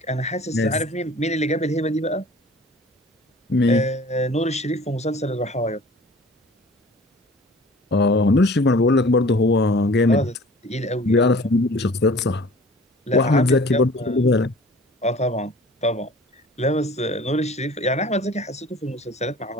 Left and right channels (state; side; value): normal; both; correlation 0.47